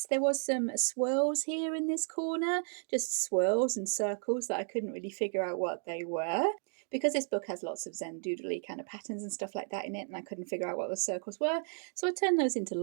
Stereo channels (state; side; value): silent; left; 56 dB below the other